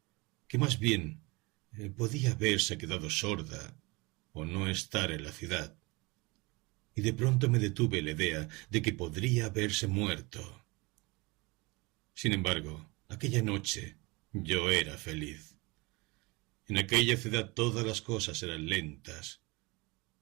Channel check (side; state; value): left; quieter; 25.2 dB